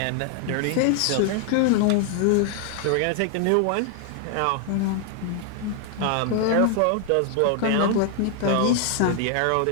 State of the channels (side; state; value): both; different; correlation 0.00